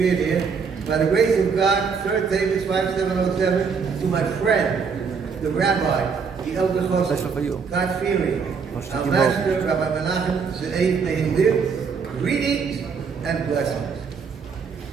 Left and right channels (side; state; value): left; quieter; 5.7 dB